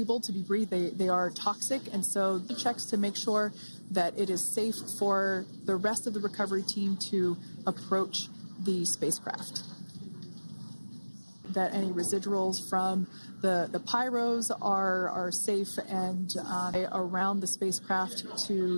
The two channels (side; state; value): both; inverted; correlation -1.00